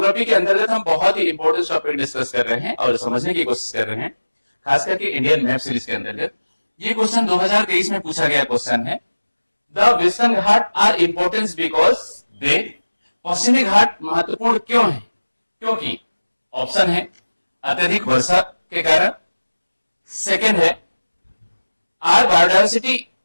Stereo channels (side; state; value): both; inverted; correlation -1.00